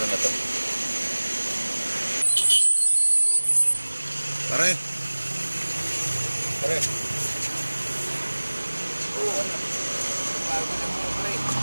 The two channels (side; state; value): both; inverted; correlation -1.00